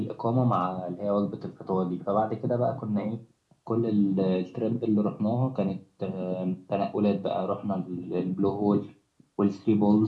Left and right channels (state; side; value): identical; both; correlation 1.00